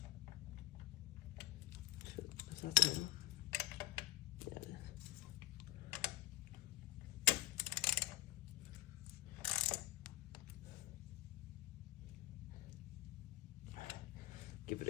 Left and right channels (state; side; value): quieter; right; 18.3 dB